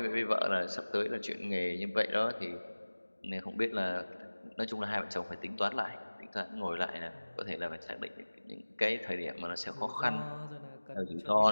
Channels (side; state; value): both; inverted; correlation -1.00